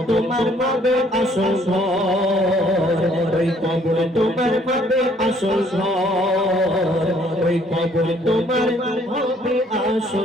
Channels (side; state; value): both; normal; correlation 0.62